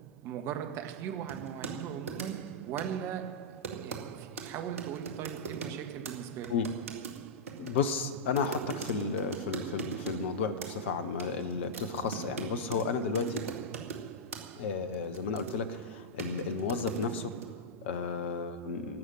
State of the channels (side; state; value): both; normal; correlation -0.10